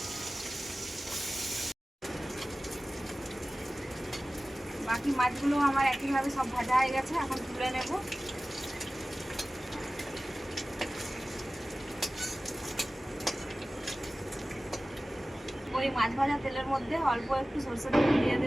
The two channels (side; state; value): both; normal; correlation 0.97